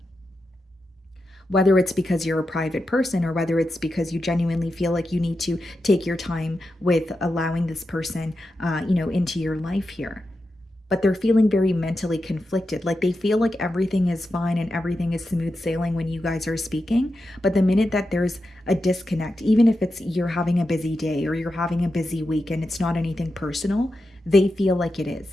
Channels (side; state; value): both; normal; correlation 0.89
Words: whether it's because you're a private person, or whether it's because you genuinely feel like you need to take your time with allowing this person into your life here. But they're feeling very mentally conflicted. Like, they feel like everything is fine and everything is smooth sailing when you guys are speaking. But the minute that there's a disconnect, even if it's you're having a busy day or you're having a busy week and it's not anything personal, they feel like it